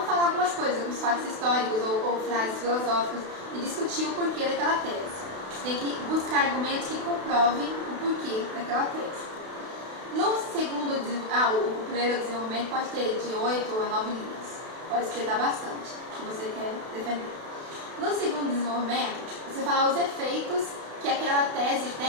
falar algumas coisas, alguns fatos históricos ou frases filosóficas e discutir o porquê daquela tese. Você tem que buscar argumentos que comprovem o porquê daquela tese. No segundo, o primeiro desenvolvimento pode ter de 8 a 9 linhas, pode explicar bastante o que você quer defender. No segundo desenvolvimento, você fala os efeitos que aquela tese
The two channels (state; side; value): late; left; 32 ms